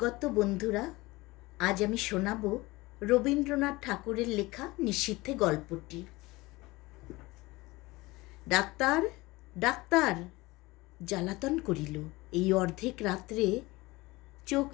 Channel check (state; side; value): quieter; right; 21.3 dB